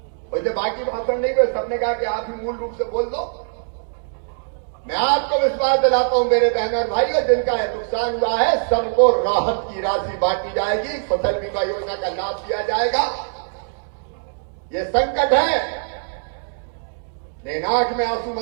वैसे बाकी भाषण नहीं हुए, सबने कहा कि आप ही मूल रूप से बोल दो। मैं आपको विश्वास दिलाता हूं मेरे बहन और भाइयों, जिनका नुकसान हुआ है सबको राहत की राशि बांटी जाएगी, फसल बीमा योजना का लाभ दिया जाएगा। ये संकट है, लेकिन आंख में आंसू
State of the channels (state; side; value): silent; left; digital silence